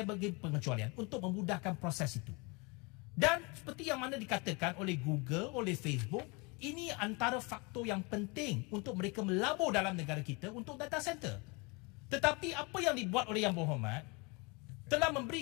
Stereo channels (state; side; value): quieter; right; 28.8 dB